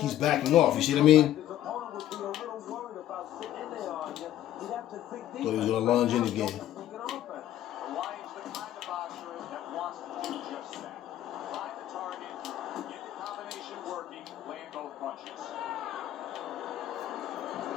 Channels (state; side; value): quieter; right; 12.5 dB